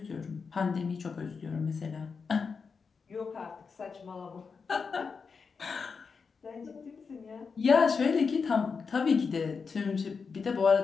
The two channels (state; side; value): quieter; right; 5.3 dB